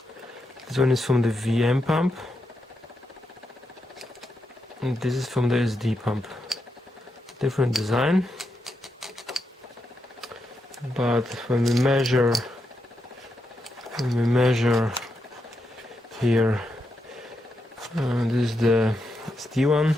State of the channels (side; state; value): both; normal; correlation 0.84